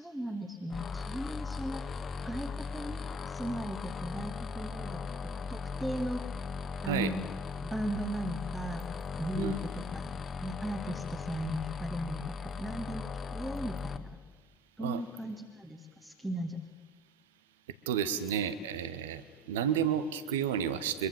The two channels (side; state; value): both; normal; correlation 0.48